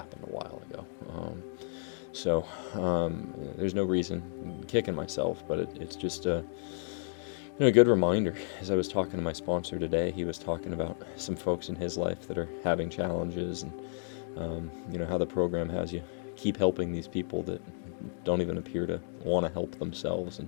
a while ago. So there's no reason kicking myself, but it's just a good reminder. As I was talking to my sponsor today, he was talking about some folks in his life that are having challenges, and how the program has you keep helping these people that don't even appear to want to help themselves. And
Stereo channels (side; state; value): right; silent; digital silence